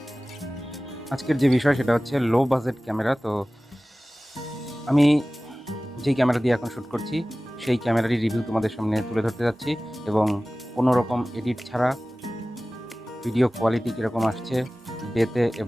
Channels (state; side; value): normal; both; correlation 0.97